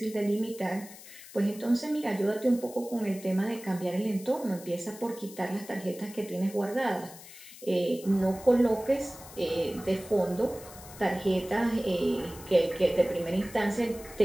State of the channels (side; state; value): left; noise; hiss, 17 dB below the sound